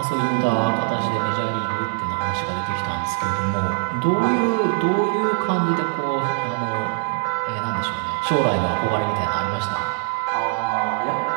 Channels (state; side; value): silent; left; 64 dB below the other